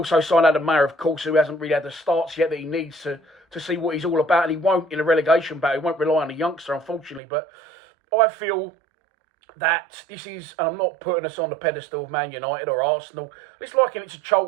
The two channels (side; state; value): left; drops out; at 7.2 s